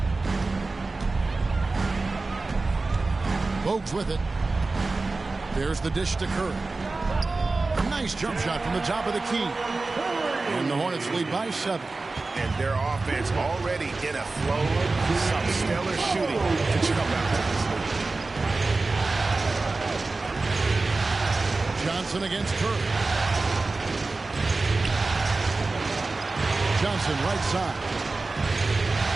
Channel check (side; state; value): left; quieter; 3.5 dB